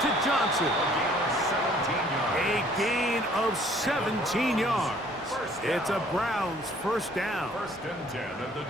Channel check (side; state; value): both; normal; correlation 0.57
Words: to Johnson. A gain of 17 yards. It's a Browns first down. First and 10 at the